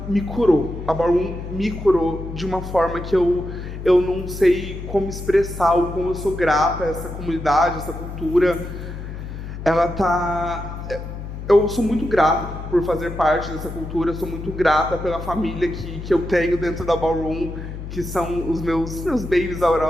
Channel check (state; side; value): noise; left; hum, 9 dB below the sound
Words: me curou. A Ballroom me curou de uma forma que eu não sei como expressar o como eu sou grata a essa comunidade, essa cultura. Eu sou muito grato por fazer parte dessa cultura, sou muito grata pela família que eu tenho dentro da Ballroom, que são os meus babies